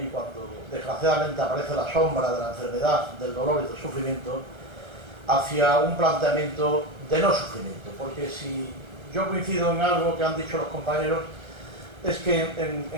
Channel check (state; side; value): late; left; 1.3 ms